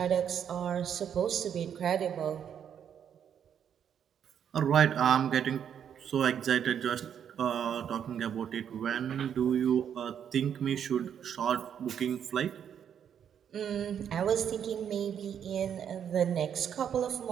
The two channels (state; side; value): quieter; left; 8.6 dB